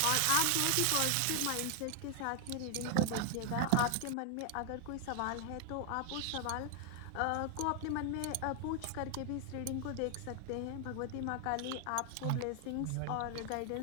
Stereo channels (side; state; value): both; different; correlation 0.00